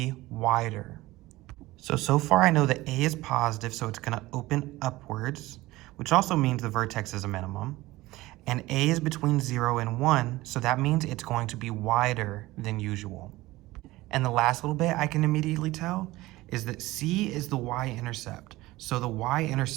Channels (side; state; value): left; quieter; 18.8 dB